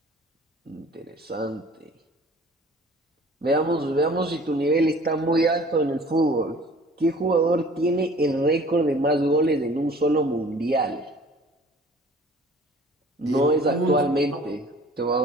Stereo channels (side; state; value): both; normal; correlation 0.49